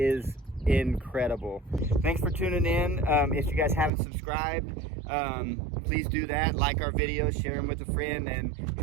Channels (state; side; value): drops out; left; at 3.9 s